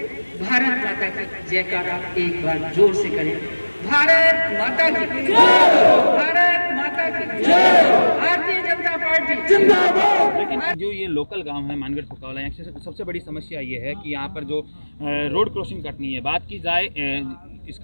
भारत माता की जयकारा एक बार जोर से करें। भारत माता की जय, भारत माता की जय, भारतीय जनता पार्टी जिंदाबाद। लेकिन जो ये लोकल गांव है मानगढ़ फुकावला, यहाँ से सबसे बड़ी समस्या ये है कि यहाँ पर जो रोड क्रॉसिंग कटनी है, बात की जाए इस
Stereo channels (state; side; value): inverted; both; correlation -1.00